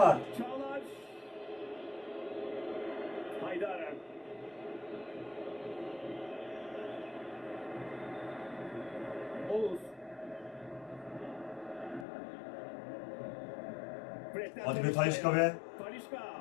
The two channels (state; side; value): drops out; right; at 12.1 s